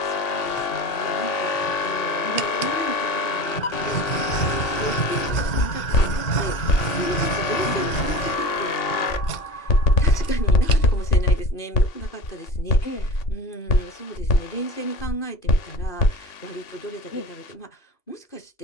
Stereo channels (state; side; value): late; right; 2.8 ms